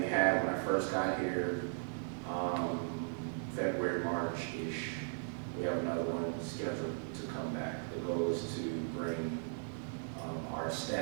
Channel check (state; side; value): silent; left; digital silence